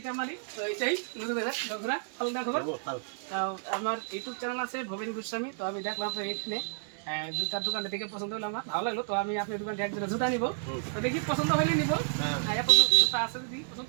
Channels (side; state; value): left; silent; 57 dB below the other